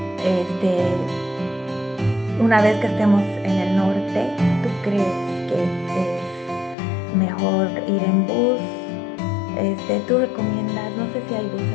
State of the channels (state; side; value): drops out; right; at 6.8 s